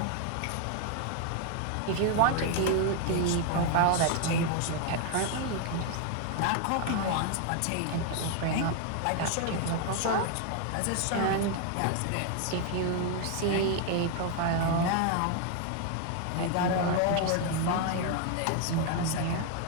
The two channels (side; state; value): both; different; correlation 0.00